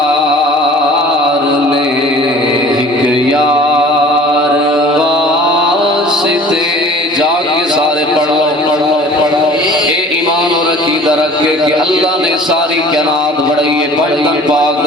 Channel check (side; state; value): both; normal; correlation 0.46